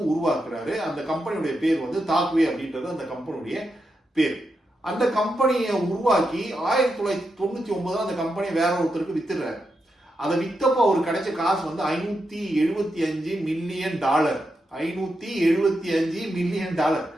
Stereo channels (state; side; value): normal; both; correlation 0.86